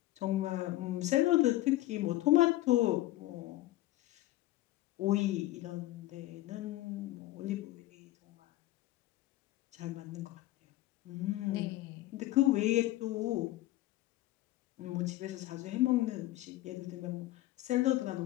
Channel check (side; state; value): right; quieter; 16.6 dB